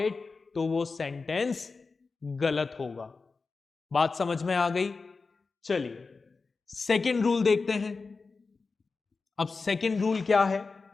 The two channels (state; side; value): quieter; right; 4.3 dB